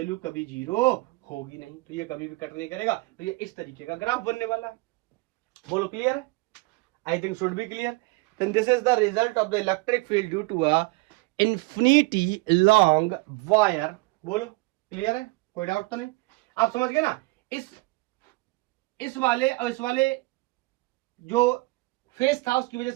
कभी 0 होगी नहीं, तो ये कभी भी कट नहीं करेगा। तो ये इस तरीके का ग्राफ बनने वाला है। बोलो क्लियर है, I think should be clear. Then this is the result of the electric field due to a infinity long wire. बोलो क्लियर है, कोई डाउट तो नहीं, आप समझ गए ना। इस वाले और इस वाले जो फेस था उसकी वजह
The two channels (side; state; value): left; quieter; 24.4 dB